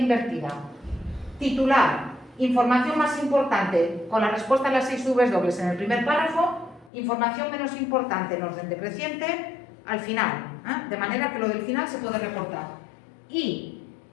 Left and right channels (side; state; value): right; drops out; at 6.9 s